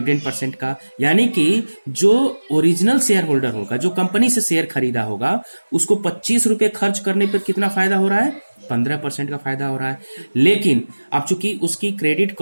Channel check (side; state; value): both; inverted; correlation -1.00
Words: का। यानी कि जो ओरिजिनल शेयर होल्डर होगा, जो कंपनी से शेयर खरीदा होगा, उसको 25 रुपए खर्च करने पर कितना फायदा हो रहा है? 15% का फायदा हो रहा है। लेकिन अब चूंकि उसकी क्रेडिट